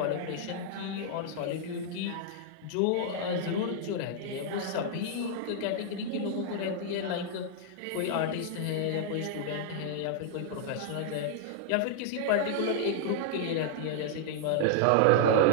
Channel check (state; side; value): different; both; correlation -0.01